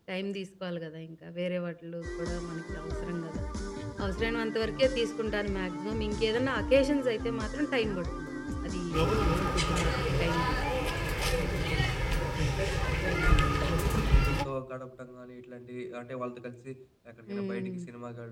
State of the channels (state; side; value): identical; both; correlation 1.00